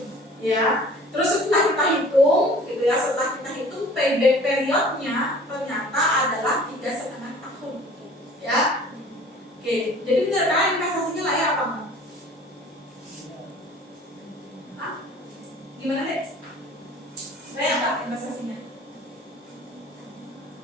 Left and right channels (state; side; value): normal; both; correlation 0.48